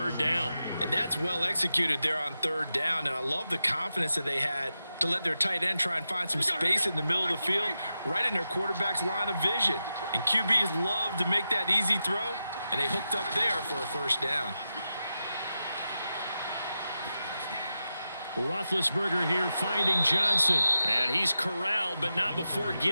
down. And that's well executed there on third down. And I love the confidence that they had to let their tight end try and find some space in the middle of the field, right in their quarterback's line of vision. And QBs love to make that easy throw, and they hooked up there for a first down. Roethlisberger here finding Johnson. And he's corralled, but not before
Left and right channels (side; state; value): both; inverted; correlation -0.90